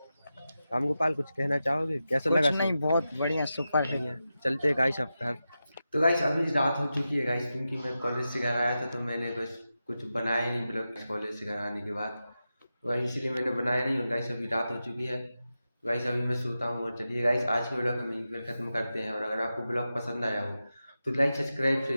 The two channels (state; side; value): inverted; both; correlation -0.91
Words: रामगोपाल कुछ कहना चाहोगे? कैसा लगा? नहीं, बहुत बढ़िया, सुपर है। बढ़िया। चलते हैं गाइस अब घर। तो गाइस अभी रात हो चुकी है गाइस, क्योंकि मैं कॉलेज से घर आया था तो मैंने बस कुछ बनाया ही नहीं ब्लॉग कॉलेज से घर आने के बाद। तो गाइस इसलिए मैंने बनाया नहीं। और गाइस अभी रात हो चुकी है, तो गाइस अभी मैं सोता हूँ। और चलिए गाइस आज के ब्लॉग हम यहीं पर खत्म करते हैं। और अगर आपको ब्लॉग पसंद आया हो तो लाइक सब्सक्राइब